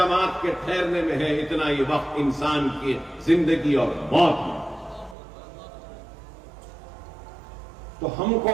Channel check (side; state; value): left; drops out; at 5.2 s